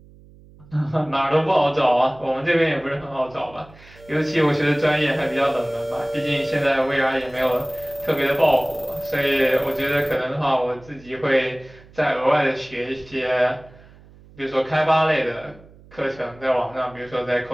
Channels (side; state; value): right; noise; hum, 24 dB below the sound